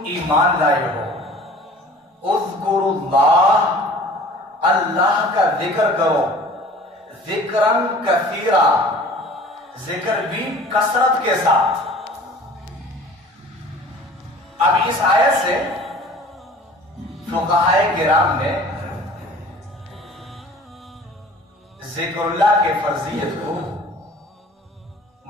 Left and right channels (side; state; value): both; normal; correlation 0.46